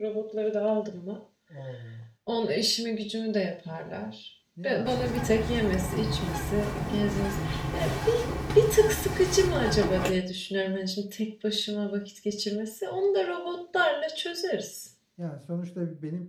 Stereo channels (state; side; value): identical; both; correlation 1.00